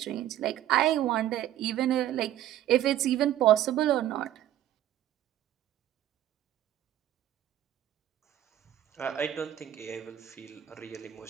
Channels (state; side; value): quieter; left; 12.4 dB